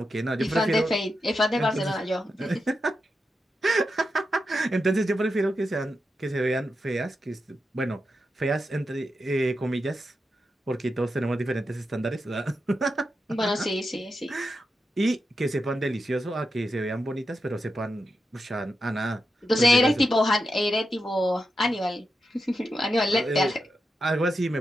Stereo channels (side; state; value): both; normal; correlation 0.88